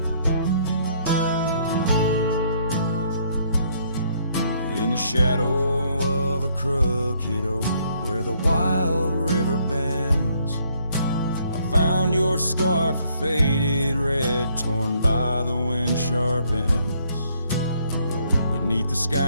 shadow of a crooked oak where the wild river bends, I found your scarf, a faded red, torn by the wind sharp ends. Beneath the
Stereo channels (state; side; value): inverted; both; correlation -0.68